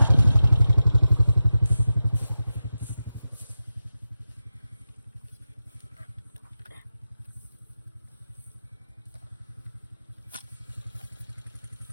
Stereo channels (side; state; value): both; inverted; correlation -0.92